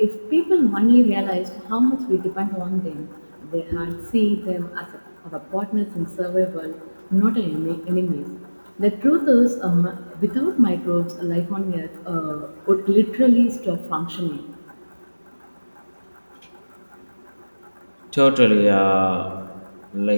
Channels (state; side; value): inverted; both; correlation -1.00